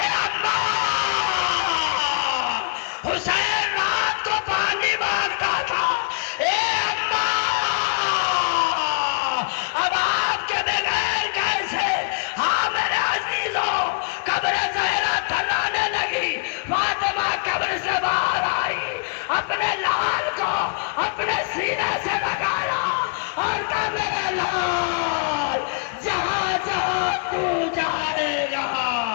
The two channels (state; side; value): quieter; right; 37.8 dB